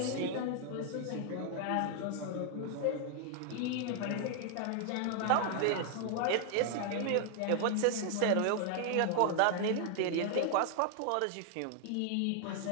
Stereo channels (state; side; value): different; both; correlation 0.00